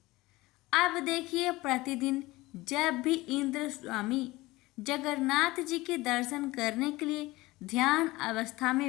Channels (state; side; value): quieter; right; 19.9 dB